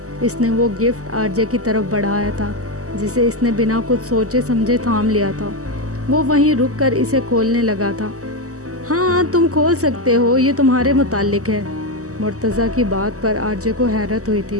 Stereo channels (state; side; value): late; left; 0.66 ms